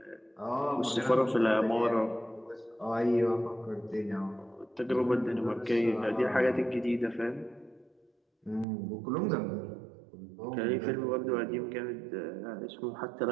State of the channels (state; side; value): drops out; left; at 8.7 s